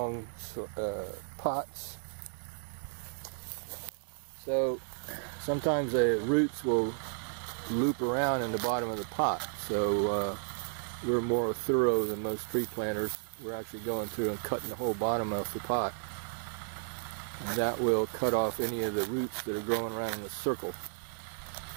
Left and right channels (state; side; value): silent; left; digital silence